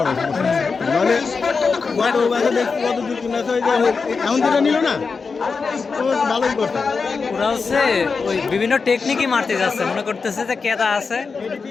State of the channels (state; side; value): quieter; right; 4.9 dB